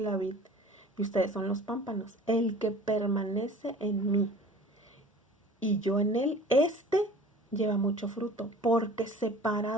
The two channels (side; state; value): both; normal; correlation 0.45